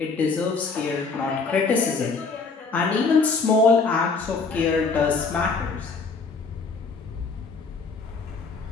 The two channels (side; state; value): right; quieter; 4.5 dB